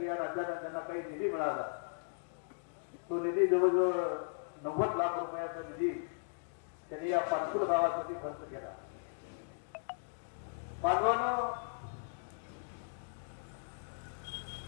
या राज्याला त्यांना काही निधी मिळाला. तो निधी जवळजवळ 90 लाख रुपयाचा निधी त्यांनी या पाचपूर गावासाठी खर्च केला. बांधवांनो,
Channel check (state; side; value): silent; right; digital silence